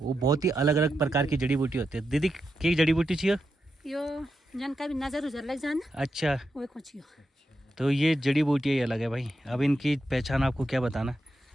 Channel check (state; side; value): normal; both; correlation 0.86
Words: बहुत ही अलग अलग प्रकार की जड़ी बूटी होती है। दीदी की जड़ी बूटी चाहिए यो जन का भी नजर उजर लग जाना। अच्छा, वो कुछ तो ये जड़ी बूटियाँ ही अलग है भाई। अब इनकी पहचान आपको क्या बताना।